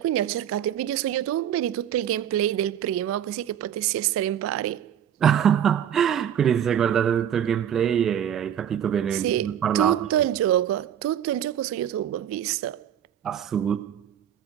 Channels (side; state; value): left; quieter; 9.7 dB